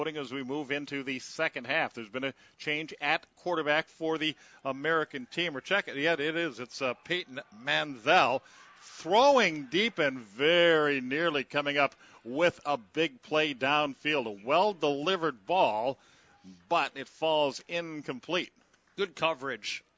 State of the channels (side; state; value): both; identical; correlation 1.00